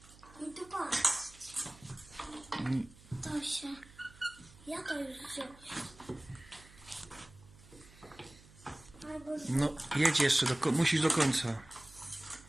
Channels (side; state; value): right; noise; hum, 22 dB below the sound